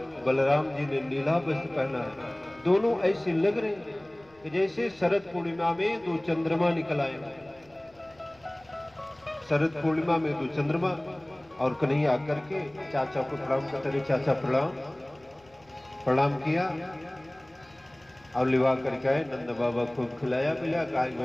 बलराम जी ने नीला वस्त्र पहना है। दोनों ऐसे लग रहे हैं कि जैसे शरद पूर्णिमा में 2 चंद्रमा निकल आए। शरद पूर्णिमा में 2 चंद्रमा, और कन्हैया आकर के चाचा को प्रणाम करते रहे। चाचा प्रणाम किया और लिवा करके आए। नंद बाबा खूब खिलाया पिलाया। कहा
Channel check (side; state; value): left; noise; rumble, 30 dB below the sound